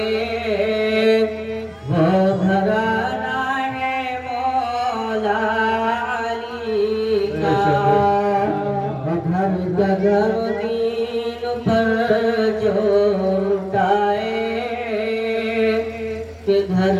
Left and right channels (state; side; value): identical; both; correlation 1.00